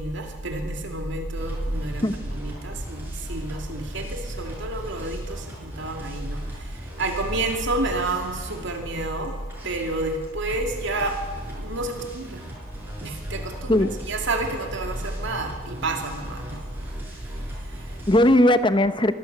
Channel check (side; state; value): both; normal; correlation 0.51